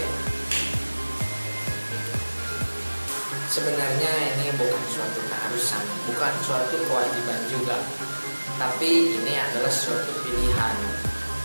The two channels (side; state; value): both; inverted; correlation -1.00